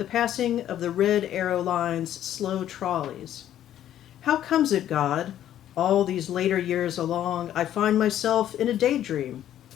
passing of the red arrow lines' slow trolleys. How comes it, God, all these later years along, I find myself in a daydream?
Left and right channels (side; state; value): right; quieter; 11.5 dB